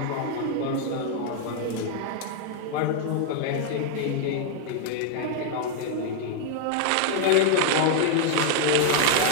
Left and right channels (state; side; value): different; both; correlation 0.00